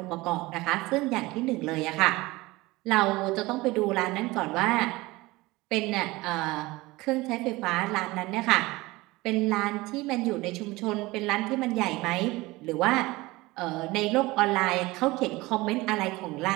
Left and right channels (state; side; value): quieter; left; 20.9 dB